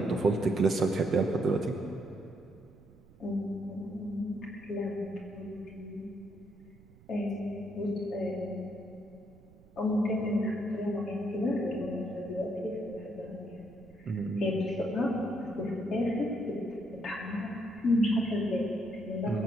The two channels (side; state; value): right; noise; rumble, 24 dB below the sound